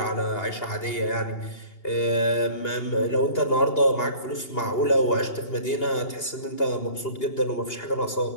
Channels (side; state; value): right; late; 2.8 ms